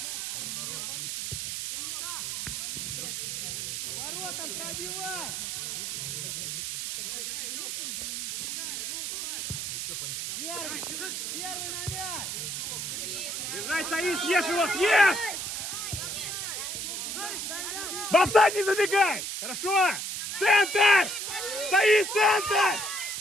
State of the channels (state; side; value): noise; right; hiss, 4 dB below the sound